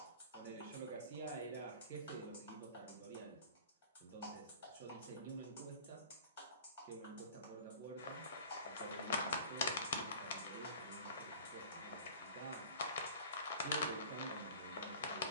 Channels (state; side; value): inverted; both; correlation -0.42